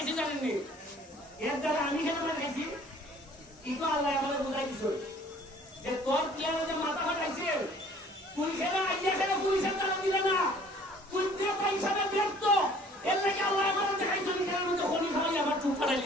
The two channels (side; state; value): both; normal; correlation 0.54